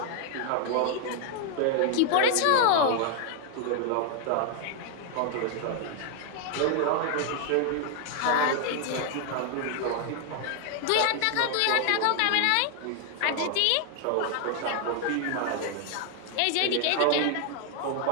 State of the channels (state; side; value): different; both; correlation 0.00